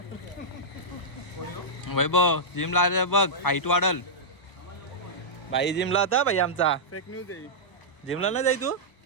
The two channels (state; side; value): late; right; 1.0 ms